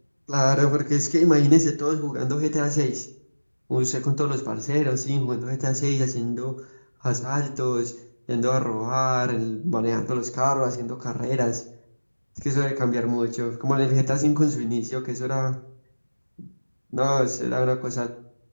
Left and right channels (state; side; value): inverted; both; correlation -1.00